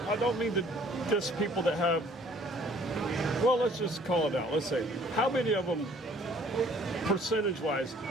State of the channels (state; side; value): normal; both; correlation 0.57